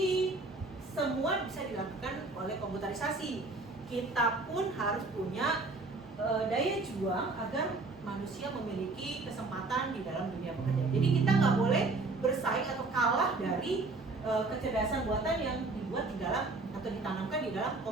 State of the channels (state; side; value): quieter; left; 3.5 dB